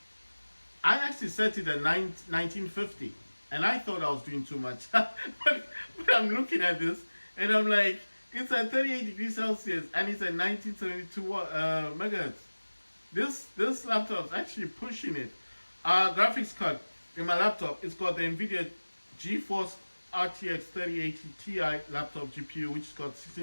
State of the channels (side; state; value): both; inverted; correlation -1.00